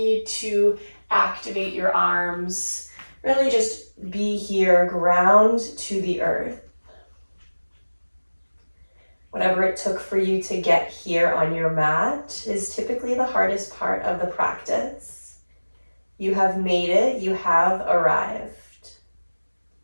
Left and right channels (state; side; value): inverted; both; correlation -1.00